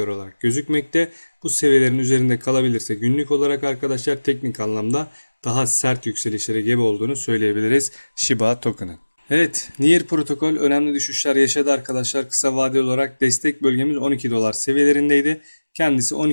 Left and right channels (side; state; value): both; inverted; correlation -1.00